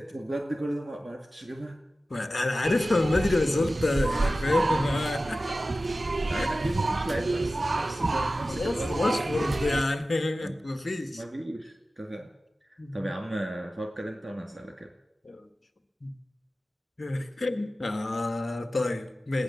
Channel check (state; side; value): normal; both; correlation 0.95